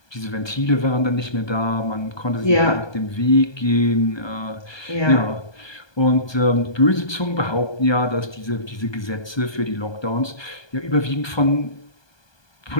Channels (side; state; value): right; late; 1.2 ms